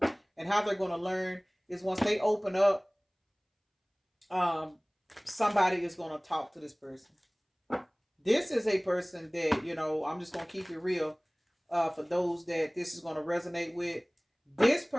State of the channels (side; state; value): both; identical; correlation 1.00